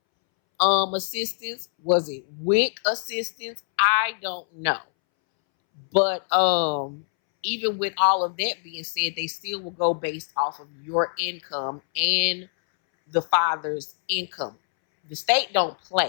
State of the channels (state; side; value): silent; right; 62 dB below the other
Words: assistance, was it WIC assistance? I don't know. But even with all of that being said, they still will go based off of your income and the father's income. The state don't